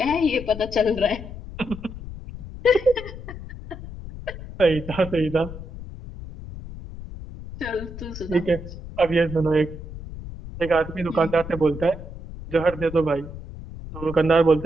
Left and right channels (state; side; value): noise; left; rumble, 12 dB below the sound